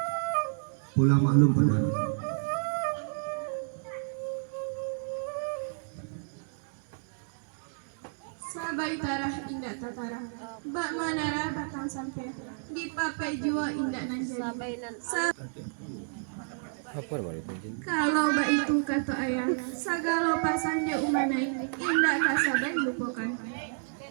Pulang maklum padano. Sabai tarah indak tatara, bak manara batang sampai, di papai juo indak nan jadi. Apa namanya itu? Kalau bak itu kata ayah, sagalo pasang je umanai, indak kasabai lupakan.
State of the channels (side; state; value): left; silent; digital silence